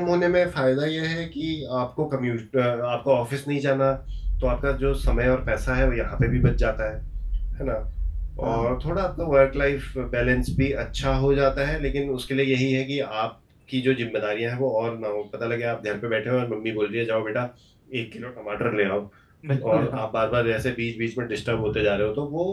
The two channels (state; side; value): identical; both; correlation 1.00